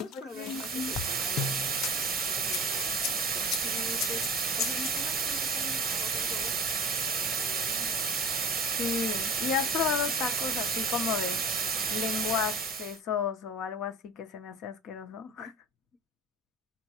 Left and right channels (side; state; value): both; normal; correlation 0.39